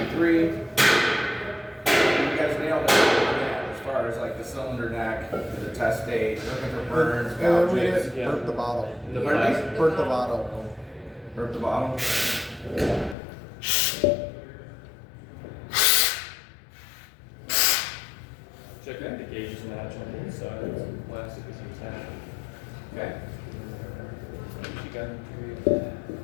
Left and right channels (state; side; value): drops out; right; at 13.2 s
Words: 3. You guys nailed it on that as far as like the cylinder neck, the test date, looking for burns, And then we gouges. didn't burp the bottle. The Pardon me? plastic. Burp the bottle. Burp the bottle. Check that the gauges match on both sides. Plastic is intact. Okay. She got